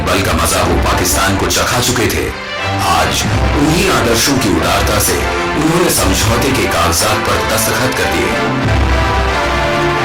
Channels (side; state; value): both; identical; correlation 1.00